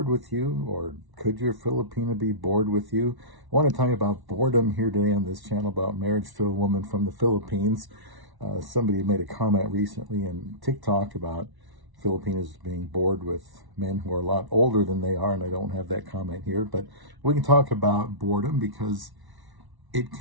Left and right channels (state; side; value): late; left; 1.1 ms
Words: with you, or could your Filipina be bored with you? I want to talk about boredom here today on this channel about marriage to a woman from the Philippines. Somebody made a comment recently in TikTok about Filipinos being bored with men who are a lot older than they are, and I don't have that comment here, but we can talk about boredom because it